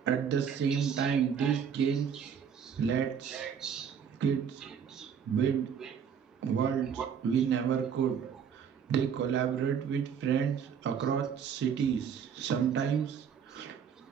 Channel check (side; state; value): left; quieter; 7.5 dB